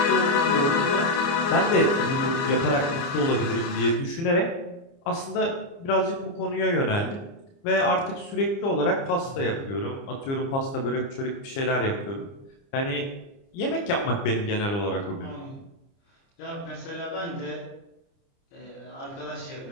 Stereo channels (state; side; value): late; right; 29 ms